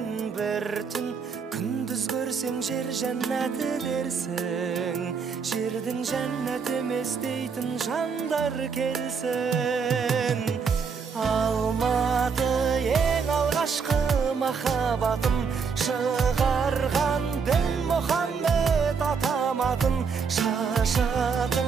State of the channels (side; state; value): left; quieter; 5.7 dB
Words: бір түн, күндіз көрсең жер жәннаты дерсің. Жердің жәннат емес дейтін жандар келсін. Алматы ең алғашқы махаббатым, шығарған дін Мұхаммед атаматын,